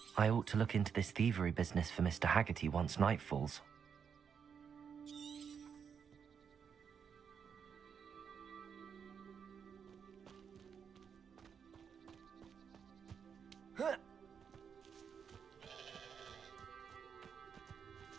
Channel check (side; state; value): left; quieter; 6.9 dB